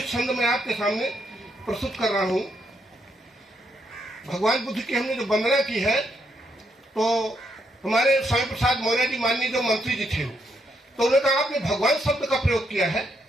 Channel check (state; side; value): normal; both; correlation 0.77